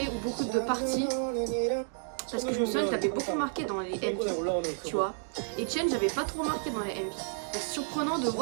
ou beaucoup de parties. Parce que je me souviens qu'il avait beaucoup marqué dans les MV, tu vois. Et Etienne, j'avais pas trop marqué dans les MV. Donc c'est surprenant de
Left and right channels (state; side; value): silent; left; digital silence